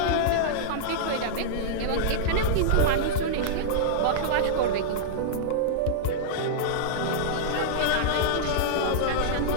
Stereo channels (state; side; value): different; both; correlation -0.02